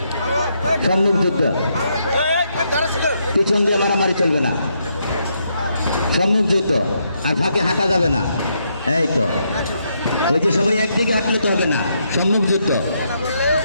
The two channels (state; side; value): inverted; both; correlation -0.77